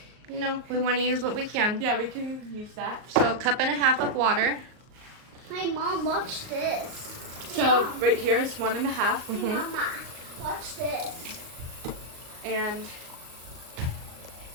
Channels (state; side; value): late; left; 38 ms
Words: No, we want to use what we can. yeah, we can use that. So 1.5 cups of water. Hey, Mom, watch this. So, right here is 1.5. Mm-hmm. Mama, watch this. And